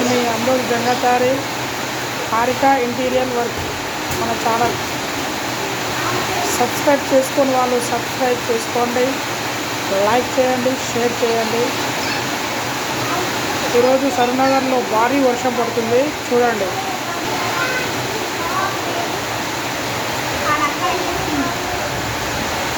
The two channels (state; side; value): identical; both; correlation 1.00